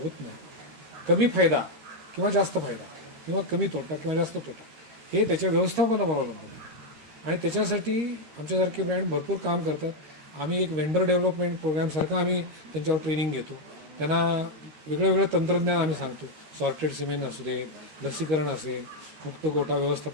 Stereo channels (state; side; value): late; left; 13 ms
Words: होत नाही. कमी फायदा किंवा जास्त फायदा किंवा कमी तोटा किंवा जास्त तोटा हे त्याच्या व्यवस्थापनावर अवलंबून आहे. आणि त्याच्यासाठी आमच्यासारखे ब्रँड भरपूर काम करतात. आम्ही एक व्हेंडर डेव्हलपमेंट प्रोग्रामसारखा आम्ही त्यांच्यावर ट्रेनिंग घेतो, त्यांना वेगळं तंत्रज्ञान आम्ही सांगतो. सॉर्टेड सिमेंट असू दे, लसीकरण असेल, मुक्त गोठा